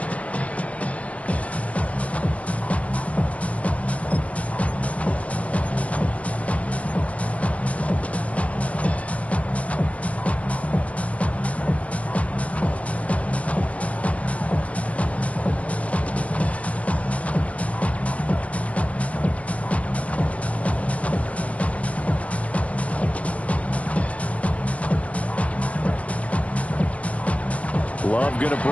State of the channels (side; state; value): right; late; 0.066 ms